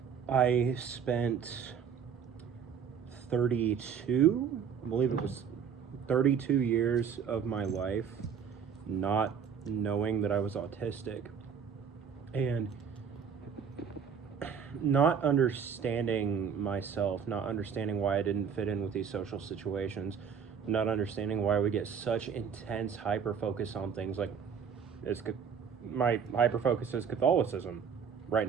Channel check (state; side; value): quieter; left; 7.1 dB